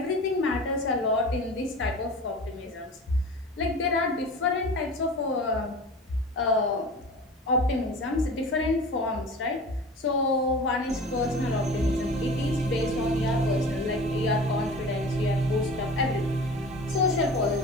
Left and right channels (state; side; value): normal; both; correlation 0.38